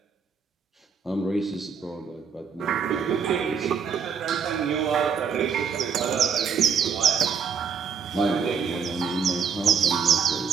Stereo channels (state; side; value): quieter; left; 6.4 dB